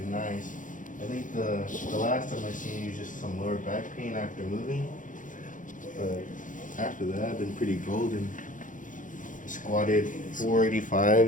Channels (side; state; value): right; late; 0.38 ms